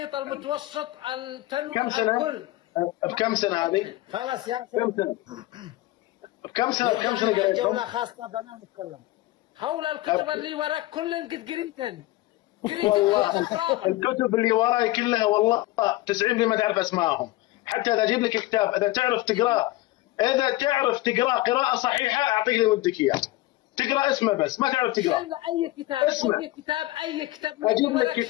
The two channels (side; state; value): right; quieter; 18.2 dB